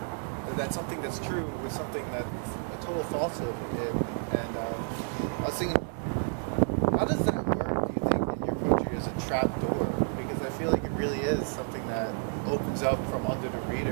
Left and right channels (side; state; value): left; silent; 58 dB below the other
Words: that something that's true with something that's a total falsehood? And I was thinking, how does that work, do you think, in your poetry as a trap door? Because I feel like it really is something that opens up from under the